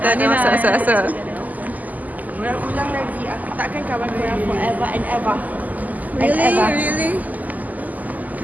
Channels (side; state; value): left; late; 0.080 ms